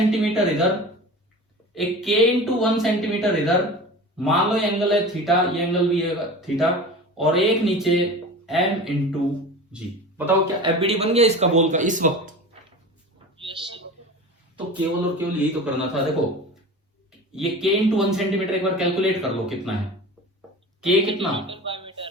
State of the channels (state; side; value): normal; both; correlation 0.34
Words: इधर, एक K इंटू 1 सेंटीमीटर इधर, मान लो ये एंगल है थीटा, ये एंगल भी है थीटा, और एक नीचे M इंटू जी। बताओ क्या एफबीडी बन गया इसका बॉल का इस वक्त? Yes sir. तो केवल और केवल यही तो करना था। देखो ये K इंटू 1 सेंटीमीटर एक बार कैलकुलेट कर लो कितना है। K कितना? Newton by